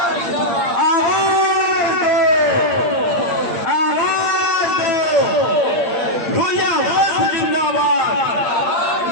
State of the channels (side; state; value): right; late; 8.7 ms